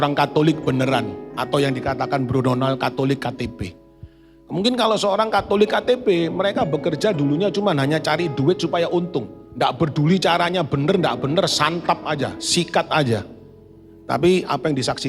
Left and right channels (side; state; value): both; identical; correlation 1.00